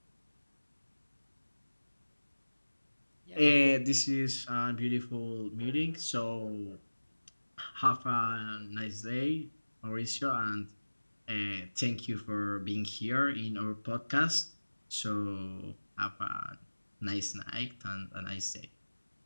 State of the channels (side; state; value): both; inverted; correlation -1.00